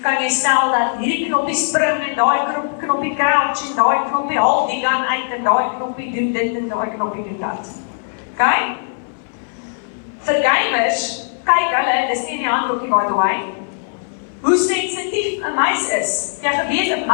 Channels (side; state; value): right; silent; 60 dB below the other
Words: kan jy stel dat hierdie knoppie spring en daai knoppie crouch en daai knoppie haal die gun uit en daai knoppie doen dit en daai knoppie doen dat. Okay? Vir gamers, kyk hulle, dis nie in die handboekie by the way, hoe sensitief 'n muis is. Jy geweet 'n